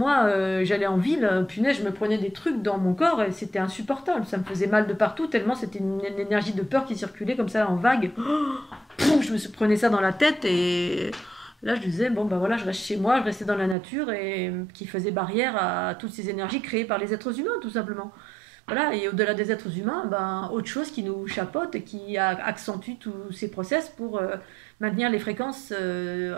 j'allais en ville, punaise, je me prenais des trucs dans mon corps et c'était insupportable. Ça me faisait mal de partout, tellement c'était une énergie de peur qui circulait comme ça en vague. Je me prenais ça dans la tête et là je disais, bon ben voilà, je reste chez moi, je restais dans la nature et qui faisait barrière à toutes ces énergies créées par les êtres humains, tout simplement. Voilà, et au-delà des êtres humains, ben, autre chose qui nous chapeaute et qui accentue tous ces process pour maintenir les fréquences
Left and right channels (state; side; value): drops out; left; at 13.8 s